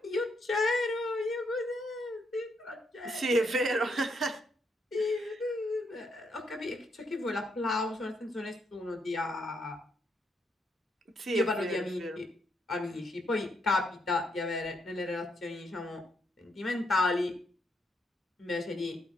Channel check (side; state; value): both; normal; correlation 0.76